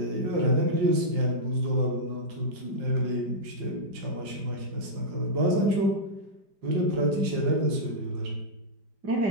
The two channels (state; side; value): late; left; 4.9 ms